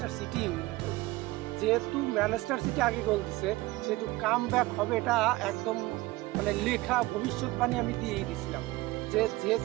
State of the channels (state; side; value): quieter; left; 19.8 dB